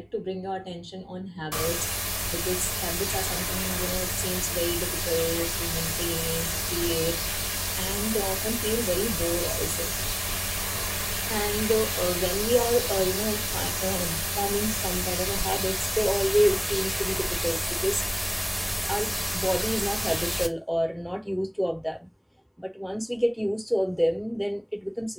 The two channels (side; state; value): both; identical; correlation 1.00